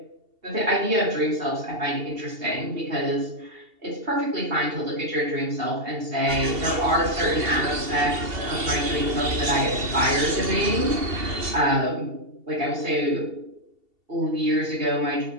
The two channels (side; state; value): left; late; 2.7 ms